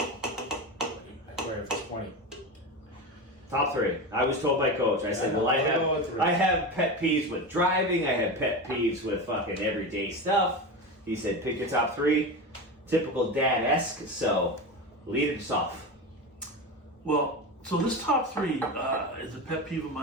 Where if it's 20. Top 3. I was told by coach. I said, Yeah, well, I'll go with 3. I have pet peeves with driving. I have pet peeves with fucking everyday stuff. He said, pick your top 3. Typical dad-esque. So lead us off. Well, so this top 3 is a pet peeve of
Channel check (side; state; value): both; normal; correlation 0.22